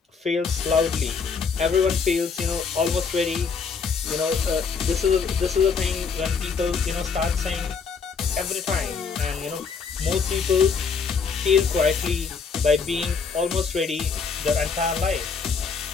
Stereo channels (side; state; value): right; quieter; 5.5 dB